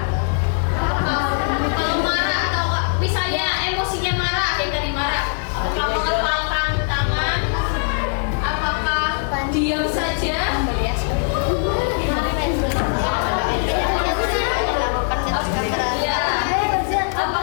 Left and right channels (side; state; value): right; silent; 65 dB below the other